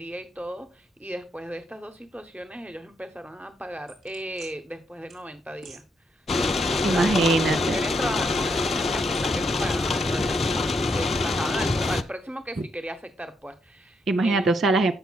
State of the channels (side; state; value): both; normal; correlation 0.77